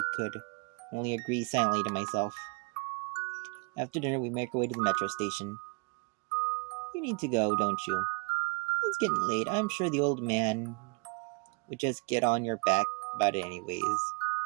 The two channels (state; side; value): quieter; left; 32.4 dB